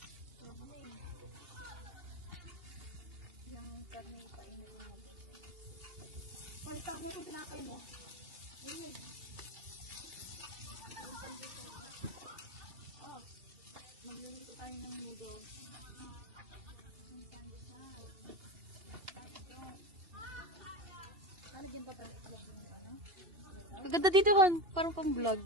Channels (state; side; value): late; left; 2.8 ms